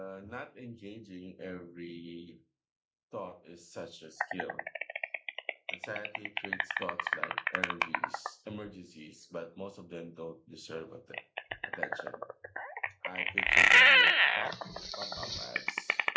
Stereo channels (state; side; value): identical; both; correlation 1.00